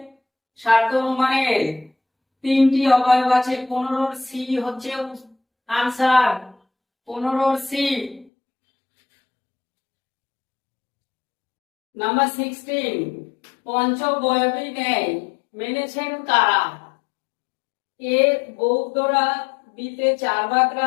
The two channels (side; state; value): right; drops out; at 8.3 s